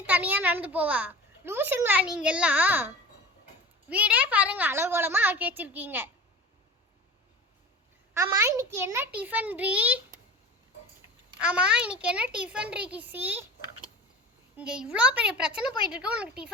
தனியா நடந்து போவா? லூசுங்களா நீங்க எல்லாம்? வீடே பாருங்க அலங்கோலமா ஆக்கி வச்சிருக்கீங்க. ஆமா, இன்னைக்கு என்ன டிஃபன் ரீ கிசி? இங்க இவ்வளோ பெரிய பிரச்சனை போயிட்டு இருக்கு, உனக்கு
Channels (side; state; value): both; normal; correlation 0.36